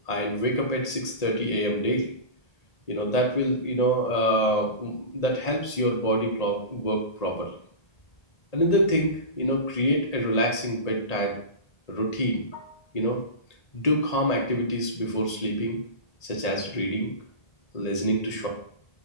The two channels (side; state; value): right; late; 1.8 ms